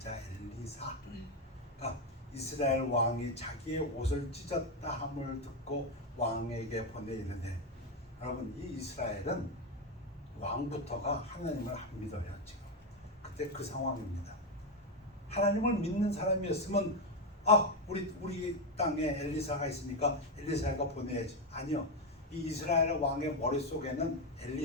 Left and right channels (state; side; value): normal; both; correlation 0.08